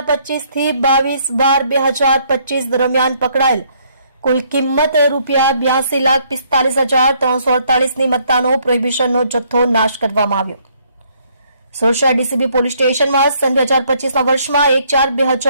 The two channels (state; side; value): inverted; both; correlation -0.67